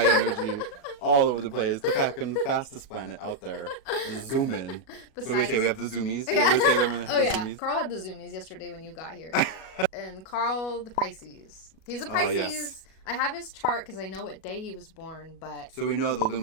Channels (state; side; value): late; right; 37 ms